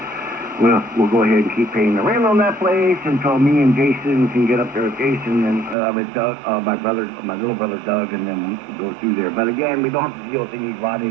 we'll go ahead and keep paying the rent on that place until me and Jason can get up there with Jason and with Doug, my little brother Doug, and then go through there. But again, we don't have to deal with any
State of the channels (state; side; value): drops out; left; at 5.8 s